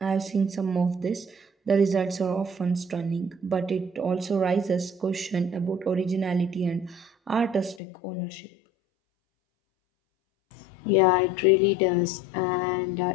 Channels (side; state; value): right; drops out; at 7.8 s